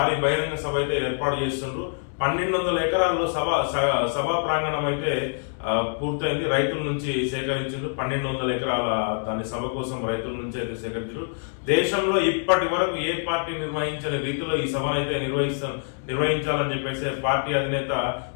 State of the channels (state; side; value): silent; right; digital silence